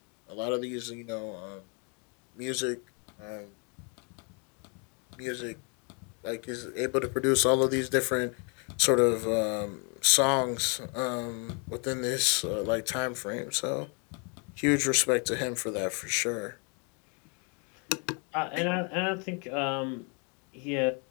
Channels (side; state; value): right; quieter; 36.4 dB